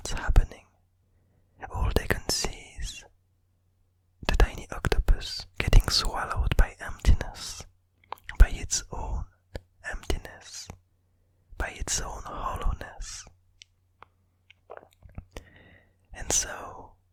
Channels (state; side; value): identical; both; correlation 1.00